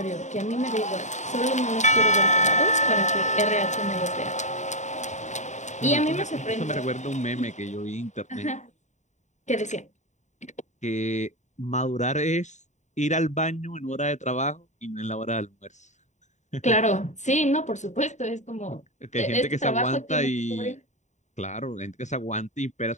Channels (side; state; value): right; late; 0.34 ms